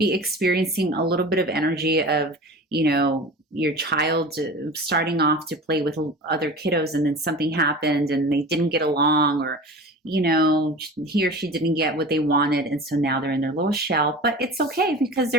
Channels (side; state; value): both; normal; correlation 0.36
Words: experiencing a little bit of energy of, your child starting off to play with other kiddos, and then something happened and they didn't get along, or he or she didn't get what they wanted, and so now they're in their little shell. But it's okay, because